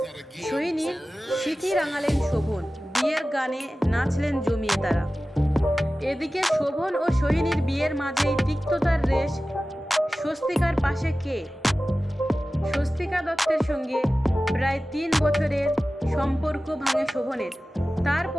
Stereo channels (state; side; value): normal; both; correlation 0.96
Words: সোহিনীর সিঁথি রাঙালেন শোভন। বিয়ের গানে নাচলেন জমিয়ে তারা। এদিকে শোভন ও সোহিনীর বিয়ের মাঝেই তিক্ততার রেশ স্বস্তিকার পাশে কে? স্বস্তিকা দত্তের সঙ্গে প্রায় 3 বছরের সম্পর্ক ভাঙে শোভনের।